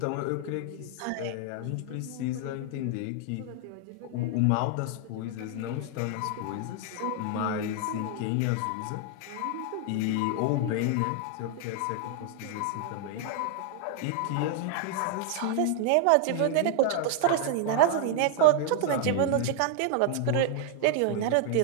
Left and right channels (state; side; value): different; both; correlation 0.00